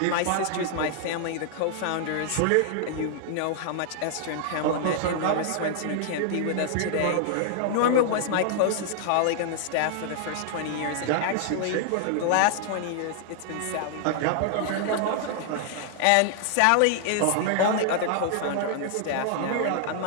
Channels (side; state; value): both; different; correlation -0.01